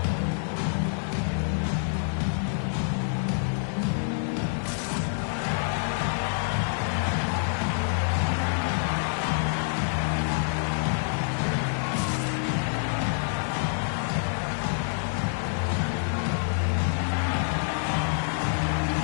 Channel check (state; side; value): silent; right; 60 dB below the other